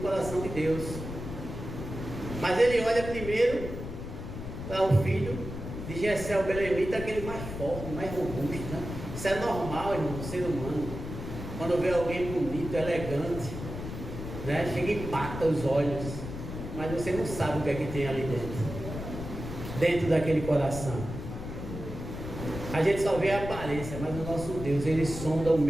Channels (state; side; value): noise; left; rumble, 8 dB below the sound